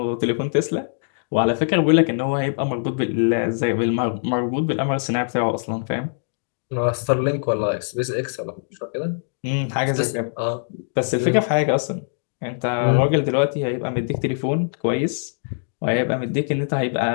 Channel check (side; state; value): right; silent; digital silence